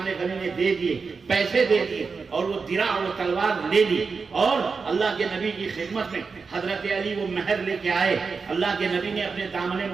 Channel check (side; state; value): left; quieter; 4.9 dB